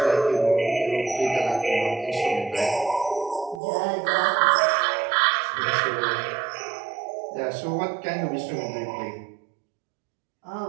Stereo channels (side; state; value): left; drops out; at 3.6 s